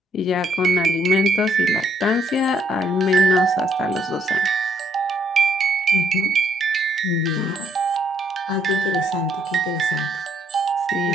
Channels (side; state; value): both; normal; correlation 0.68